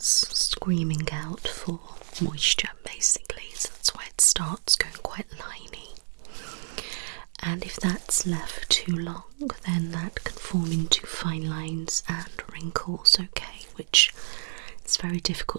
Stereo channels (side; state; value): left; silent; digital silence